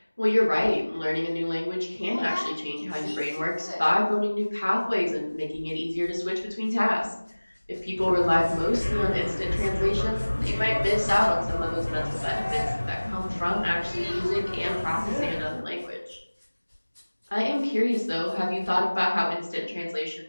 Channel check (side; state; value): both; inverted; correlation -1.00